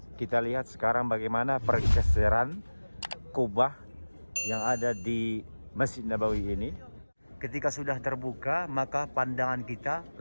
kita lihat sekarang bagaimana pergeseran kubah yang ada di Masjid Nabawi ini. Ketika sudah terbuka, maka pandangan kita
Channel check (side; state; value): both; inverted; correlation -1.00